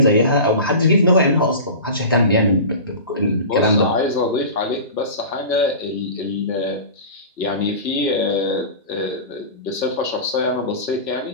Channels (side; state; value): both; inverted; correlation -0.33